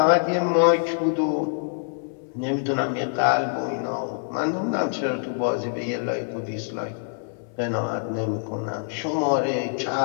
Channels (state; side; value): silent; right; 62 dB below the other